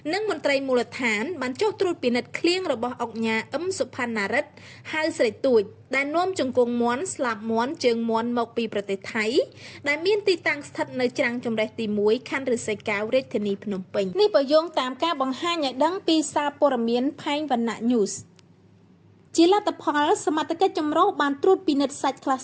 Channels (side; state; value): both; identical; correlation 1.00